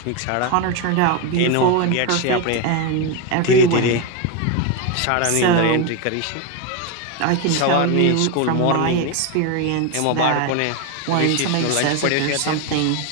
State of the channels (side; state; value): both; different; correlation 0.02